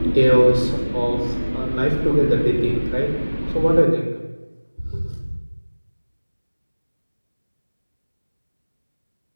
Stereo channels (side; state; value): both; inverted; correlation -1.00